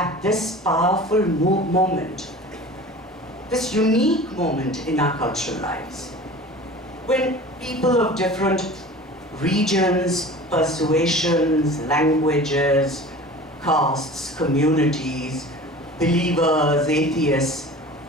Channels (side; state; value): both; normal; correlation 0.39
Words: this powerful moment, this unique moment in our cultural lives, when people of different regions, persuasions, languages, castes, communities, believers, atheists,